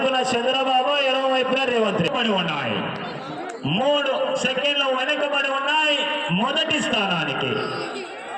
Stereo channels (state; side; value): identical; both; correlation 1.00